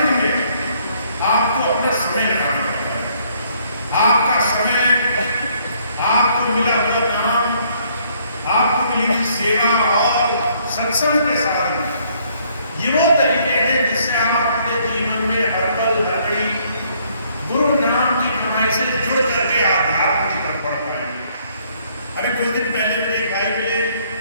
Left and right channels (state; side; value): inverted; both; correlation -0.66